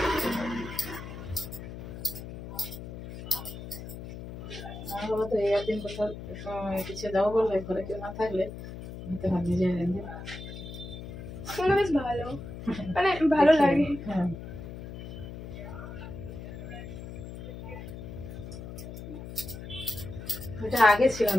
আমার বাবা তো এই একদিন কোথাও কিছু যাবো বললে ঘরে কেউ না থাকলে হতে পারে নিজে রেঁধে শুনে বেশ ভালো, মানে ভালো লাগে। হ্যাঁ এটা আগে ছিল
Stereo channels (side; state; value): left; noise; hum, 10 dB below the sound